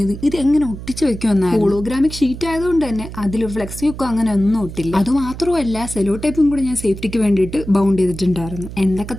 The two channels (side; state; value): right; noise; hum, 11 dB below the sound